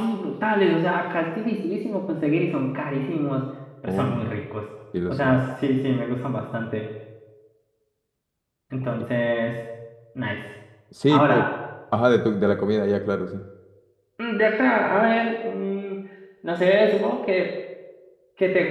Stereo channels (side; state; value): both; identical; correlation 1.00